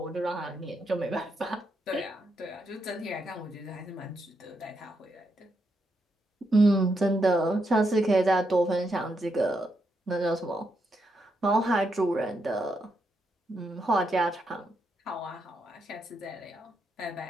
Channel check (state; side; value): normal; both; correlation 0.81